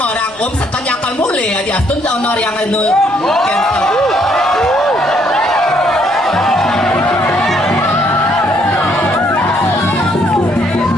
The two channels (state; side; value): noise; right; rumble, 27 dB below the sound